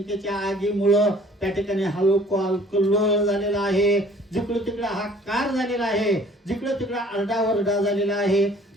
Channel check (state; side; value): normal; both; correlation 0.54